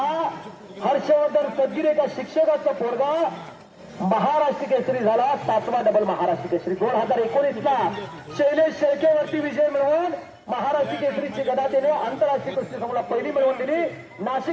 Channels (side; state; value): both; identical; correlation 1.00